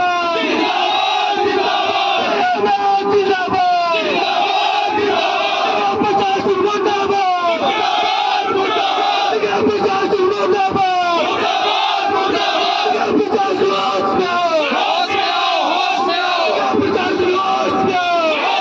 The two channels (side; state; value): both; identical; correlation 1.00